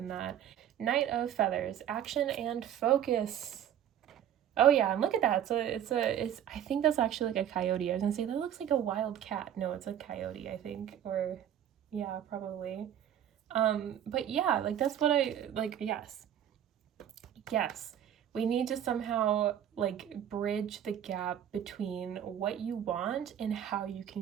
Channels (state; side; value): quieter; left; 10.2 dB